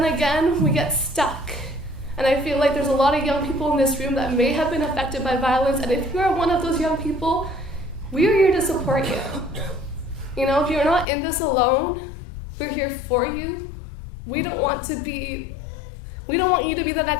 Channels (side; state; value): right; drops out; at 11.1 s